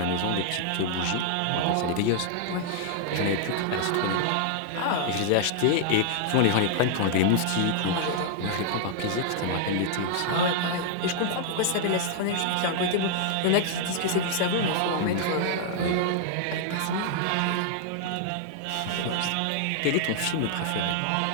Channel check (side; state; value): both; different; correlation -0.01